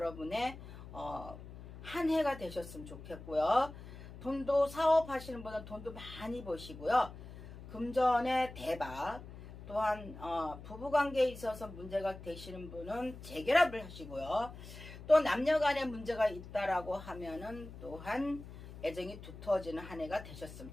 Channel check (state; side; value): noise; left; hum, 14 dB below the sound